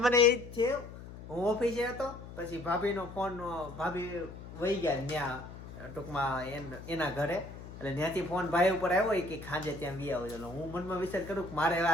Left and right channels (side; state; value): left; noise; hum, 13 dB below the sound